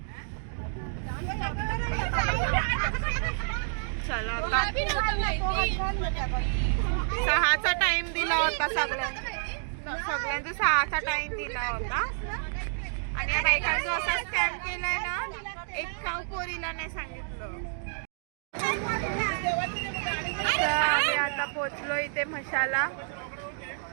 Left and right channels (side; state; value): left; silent; digital silence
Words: चला आता 6चा टाइम दिला होता सगळ्यांचा 6चा टाइम दिला होता आणि या बायकांचा असा स्कॅम केलाय ना, एक काव पोरीला नाही सांगितलं. तर आम्ही आता पोचलो इथे म्हशाला.